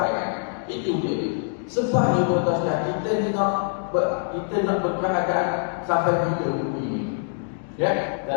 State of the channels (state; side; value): silent; right; digital silence